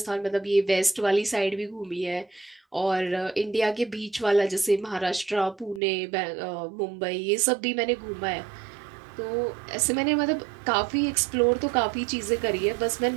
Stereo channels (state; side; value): drops out; left; at 5.8 s